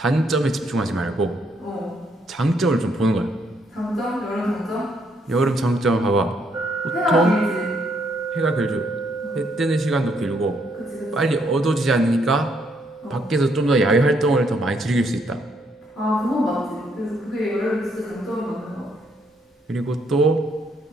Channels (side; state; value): both; normal; correlation 0.72